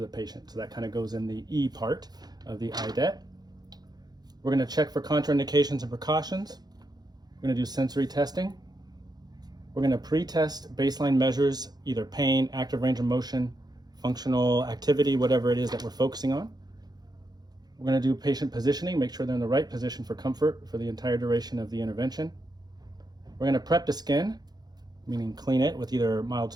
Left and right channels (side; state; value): left; late; 0.19 ms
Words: the patient. So that kind of goes in the E part of the IDET. We're going to check for contraindications and precautions. We're going to do sensory testing. We're going to pre-test baseline measures, either pain, active range of motion, functional activity, whatever it is that we're focusing on. We're going to do patient positioning, make sure they're in the right position for comfort for the entire duration of the intervention. We're going to prep the skin, meaning clean it with either mild